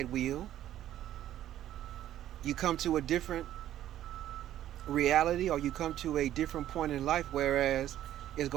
wheel, you come to a different reality, or you come to a different point in life, whereas it's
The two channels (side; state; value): left; quieter; 12.3 dB